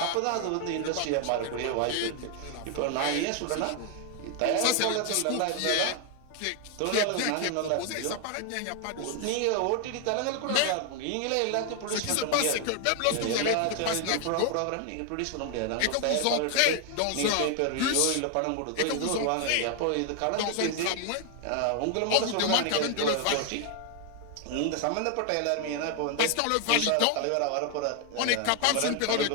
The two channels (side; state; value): both; different; correlation 0.00